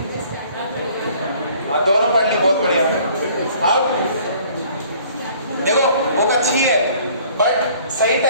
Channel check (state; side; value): inverted; both; correlation -0.56